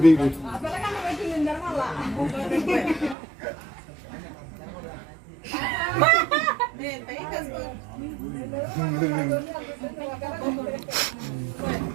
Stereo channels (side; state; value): left; drops out; at 3.2 s